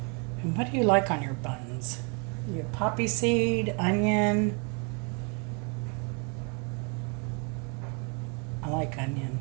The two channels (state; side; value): quieter; left; 35.6 dB